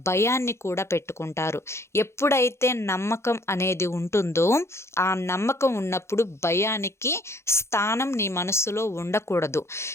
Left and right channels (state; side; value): late; right; 0.13 ms